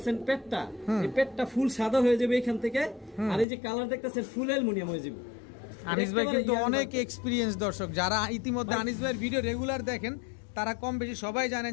পেটটা, এই পেটটা ফুল সাদা হয়ে যাবে এখান থেকে, আর এই যে কালার দেখতেছেন ফুল অ্যালুমিনিয়াম হয়ে যাবে। আনিস ভাই কিন্তু অনেক এক্সপেরিয়েন্স দর্শক, যারা ইতিমধ্যে আনিস ভাইয়ের ভিডিও রেগুলার দেখেন তারা কম বেশি সবাই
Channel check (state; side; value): drops out; right; at 3.5 s